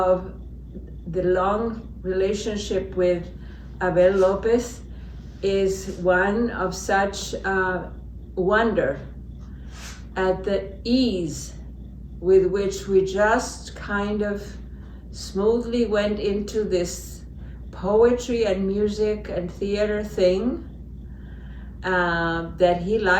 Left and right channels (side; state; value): both; identical; correlation 1.00